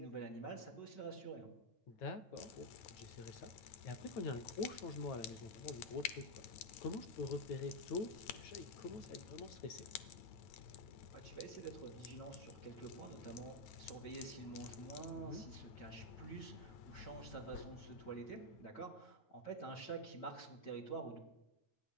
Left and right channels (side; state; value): right; late; 9.1 ms